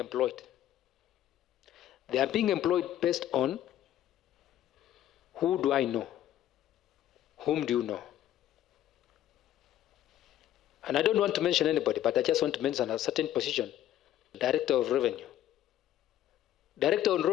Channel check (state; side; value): quieter; right; 12.2 dB